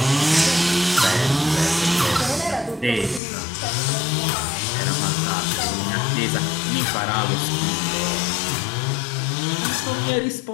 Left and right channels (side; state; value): right; drops out; at 3.2 s